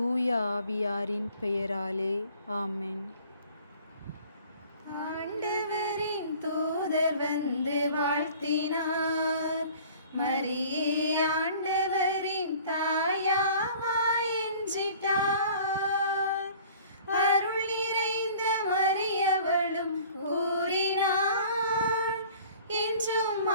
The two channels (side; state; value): both; inverted; correlation -0.49